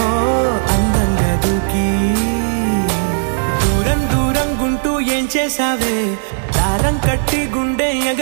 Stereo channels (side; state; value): left; silent; digital silence